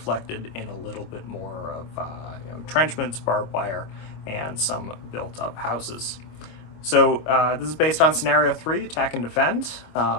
in a little bit more of entrenchments, barbed wire, and some built-up houses. So this is based on Scenario 3, Attack and Defend.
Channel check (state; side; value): late; right; 25 ms